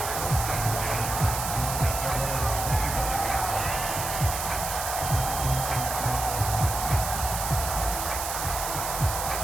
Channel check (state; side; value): noise; right; hiss, 4 dB below the sound